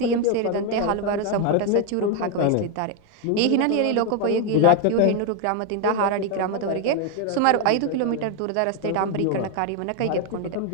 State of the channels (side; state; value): both; different; correlation 0.01